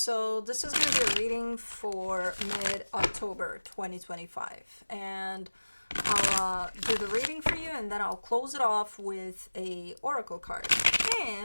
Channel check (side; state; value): both; inverted; correlation -1.00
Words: this is going to be a reading for mid-October 2025. And I'll do the reading for you and then I'll close it off with a oracle card.